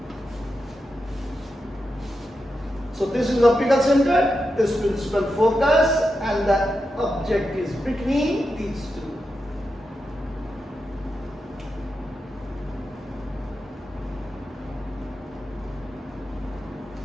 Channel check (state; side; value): normal; both; correlation 0.88